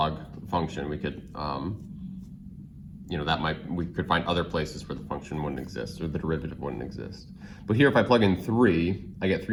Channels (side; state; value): both; identical; correlation 1.00